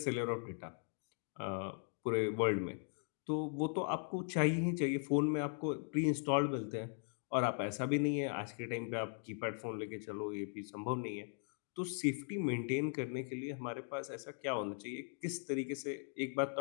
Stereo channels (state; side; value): silent; right; 52 dB below the other